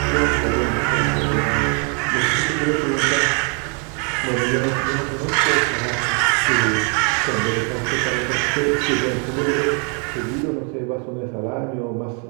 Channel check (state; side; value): quieter; left; 38.4 dB